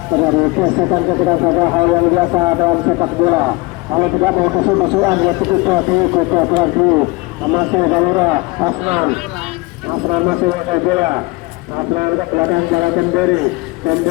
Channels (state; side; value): quieter; right; 23.2 dB